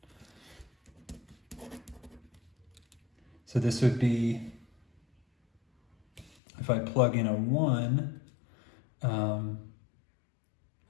So this would be, if I plug in a 1,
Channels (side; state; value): right; drops out; at 6.3 s